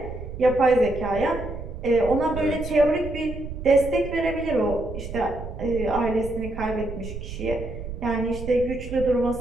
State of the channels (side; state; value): right; noise; rumble, 9 dB below the sound